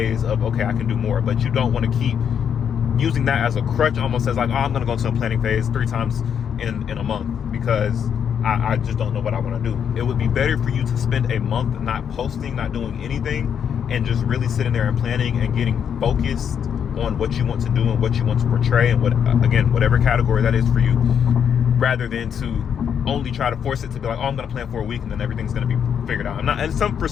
of, okay, I can do more. But you don't want to keep using that as a crutch, almost as like, oh, I'm going to go into a planning phase 3 times in a month because I just don't know what I want to do. It would be better for you to spend a month not posting, not doing anything, and just really sitting there and planning and getting focused on what you want to do and what you want to portray, and whatever category that is for you, rather than to only try to force it to be like, oh, I'm going to plan for a week and then everything's going to be figured out. For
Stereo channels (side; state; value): right; quieter; 8.0 dB